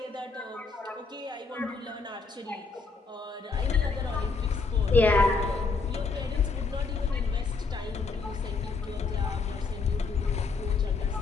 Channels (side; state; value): right; quieter; 4.4 dB